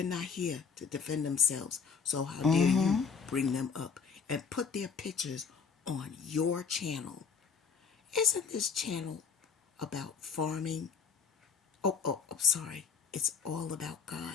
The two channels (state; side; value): quieter; right; 5.9 dB